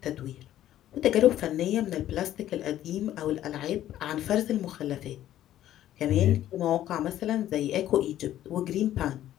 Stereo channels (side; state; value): right; quieter; 12.6 dB